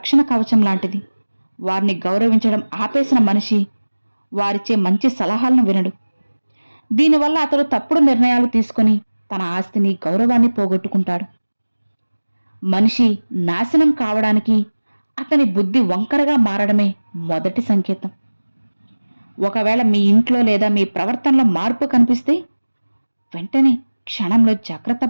కవచం లాంటిది. వారిని గౌరవించడం ఆపేసిన మనిషి వారిచ్చే మంచి సలహాలను వినడు. దీనివల్ల అతడు తప్పుడు నిర్ణయాలు తీసుకొని తన ఆస్తిని గౌరవాన్ని పోగొట్టుకుంటాడు. మనిషి నాశనం కావడానికి అతని బుద్ధి వంకరగా మారడమే మొదటి సంకేతం. ఒకవేళ మీ ఇంట్లో లేదా మీ ప్రవర్తనలో మార్పు కనిపిస్తే వెంటనే క్షణంలో జాగ్రత్త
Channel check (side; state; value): both; inverted; correlation -1.00